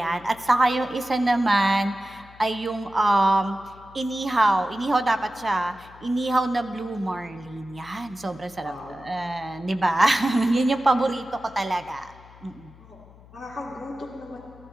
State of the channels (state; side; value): noise; left; hum, 23 dB below the sound